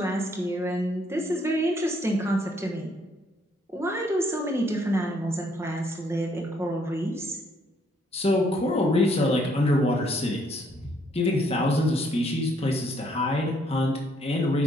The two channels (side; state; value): both; normal; correlation 0.68